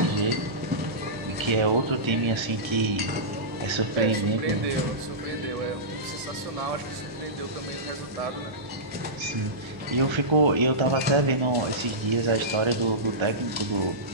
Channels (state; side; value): late; left; 1.0 ms